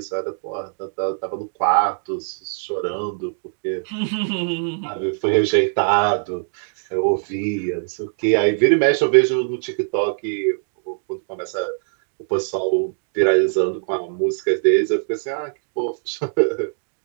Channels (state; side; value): silent; left; 64 dB below the other